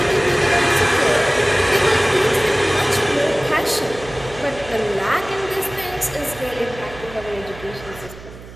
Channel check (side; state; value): right; noise; hum, 17 dB below the sound